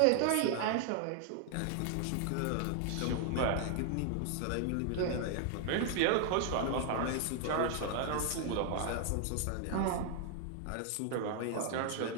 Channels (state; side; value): different; both; correlation 0.00